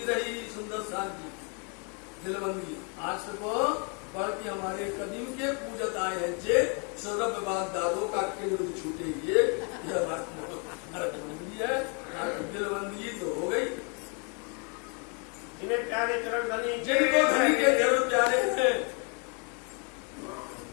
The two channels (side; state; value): right; quieter; 36.4 dB